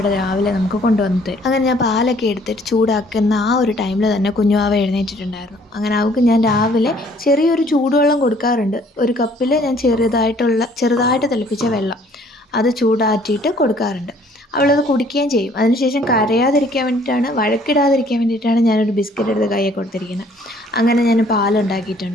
രാവിലെ നമുക്ക് കൊണ്ടുവന്നിട്ട്. അങ്ങനെ ഞാൻ പാലൊക്കെ എടുത്തിട്ട് ചൂടാക്കുന്ന ആ ഒരു ടൈമിൽ തന്നെ കുഞ്ഞുവാവ എഴുന്നേറ്റിട്ടുണ്ടായിരുന്നു. അങ്ങനെ അവൾക്ക് ഞാൻ രാവിലെ ചെറിയൊരു ചൂടുവെള്ളം കൊടുക്കാറുണ്ട്. ഒരു കപ്പിൽ ഞാൻ ചെറുതായിട്ട് തിളപ്പിച്ച വെള്ളം അത് ചൂടാറ്റിയിട്ട് കൊടുക്കാറുണ്ട്. അവളത് കുടിക്കുകയും ചെയ്യും. അതിനുശേഷം കരയാതിരിക്കാൻ വേണ്ടിയിട്ടാണ്, വഴക്കിടാതിരിക്കാൻ വേണ്ടിയിട്ടാണ് ഞാനൊരു ബിസ്ക്കറ്റ് എടുത്ത് കയ്യിൽ കൊടുത്തിരിക്കുന്നത്. അങ്ങനെ ഞാൻ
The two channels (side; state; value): both; normal; correlation 0.59